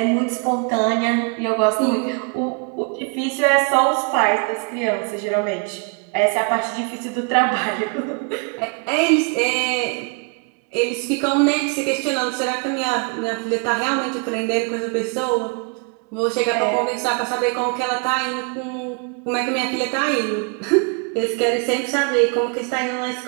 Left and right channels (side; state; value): left; quieter; 34.1 dB